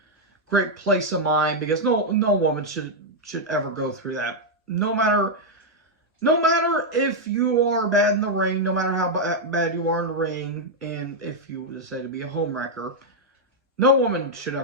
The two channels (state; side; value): normal; both; correlation -0.02